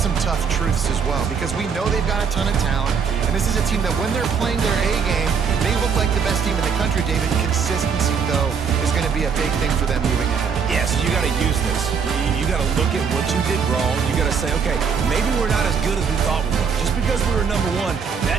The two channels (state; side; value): quieter; left; 6.3 dB